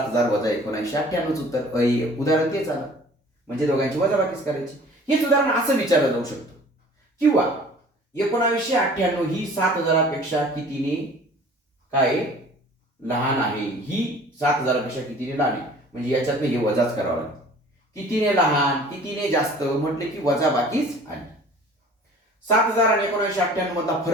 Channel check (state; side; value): normal; both; correlation 0.48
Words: वजा 1998 उत्तर. उदाहरण तेच आलं, म्हणजे दोघांची वजाबाकीच करायची. हेच उदाहरण असं विचारलं जाऊ शकतं, किंवा 1998 ही 7,000पेक्षा कितीने काय लहान आहे, ही 7,000पेक्षा कितीने लहान आहे, म्हणजे याच्यातनं हे वजाच करावं लागतं. कितीने लहान कितीने जास्त म्हटले की वजाबाकीच आली. 7,000 आणि 1998 मधला